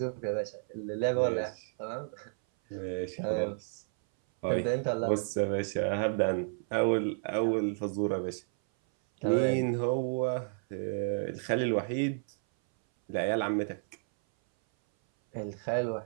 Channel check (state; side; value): silent; left; 57 dB below the other